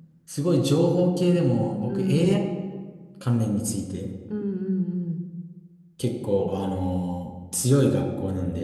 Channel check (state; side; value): identical; both; correlation 1.00